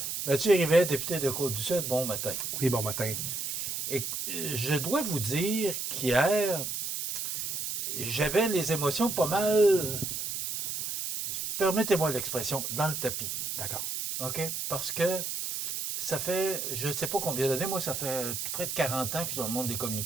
Mathieu Rivet, député de Côte-du-Sud, bon matin. Oui, bon matin. Et je dois vous dire qu'hier, j'avais les émotions pas mal, permettez-moi l'expression, dans le tapis. D'accord. OK? Parce que ça fait, je ne sais pas combien d'années, moi, ça fait près de 40 ans que je suis dans le monde des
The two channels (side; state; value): right; noise; hiss, 3 dB below the sound